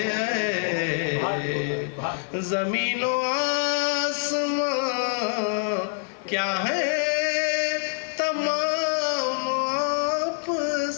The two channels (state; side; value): silent; right; digital silence